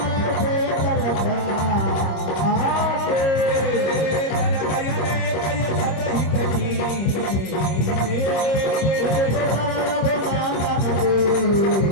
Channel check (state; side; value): late; right; 25 ms